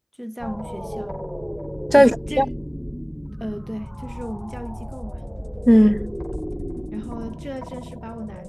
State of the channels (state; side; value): identical; both; correlation 1.00